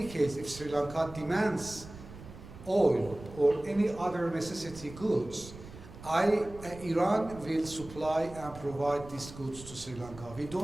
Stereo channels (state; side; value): noise; right; rumble, 16 dB below the sound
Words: case, if Sri Lanka demands oil or any other necessity goods, Iran will supply and provide these goods to Sri Lanka. We